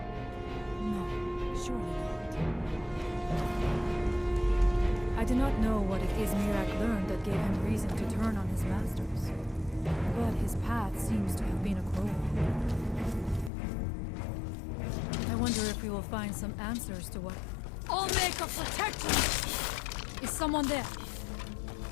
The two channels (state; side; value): drops out; right; at 13.5 s